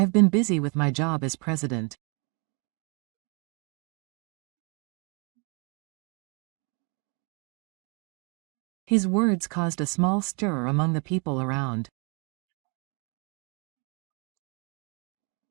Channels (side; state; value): left; quieter; 32.6 dB